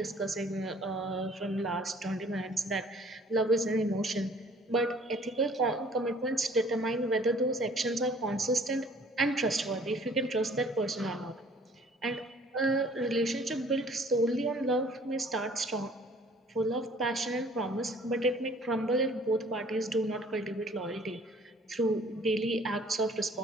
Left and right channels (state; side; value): normal; both; correlation 0.55